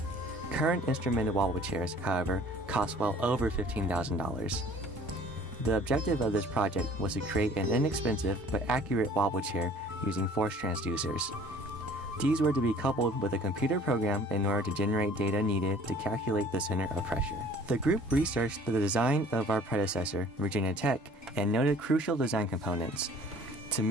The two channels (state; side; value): normal; both; correlation 0.51